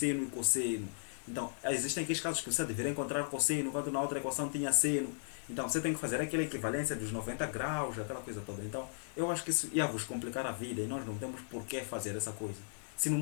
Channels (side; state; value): right; silent; digital silence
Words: e cosseno. Então, existem aqueles casos que você deveria encontrar cosseno, enquanto na outra equação tinha seno. Então, você tem que fazer aquela equivalência dos 90 graus, aquela coisa toda. Então, eu acho que isso ia vos complicar a vida e nós não temos por que fazer essa coisa. Se no